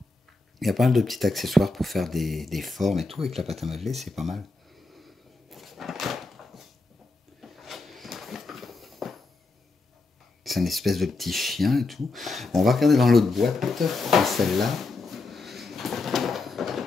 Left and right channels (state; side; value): quieter; right; 3.5 dB